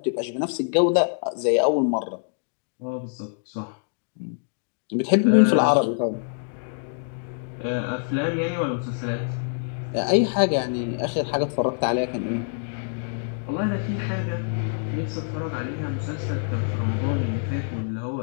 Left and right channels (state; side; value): silent; right; digital silence